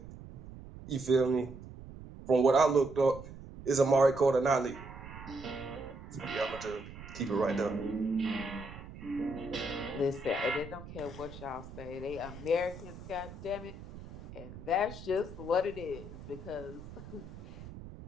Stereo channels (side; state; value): right; noise; rumble, 14 dB below the sound